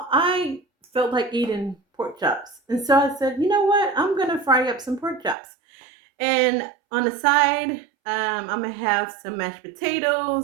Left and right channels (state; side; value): drops out; left; at 5.4 s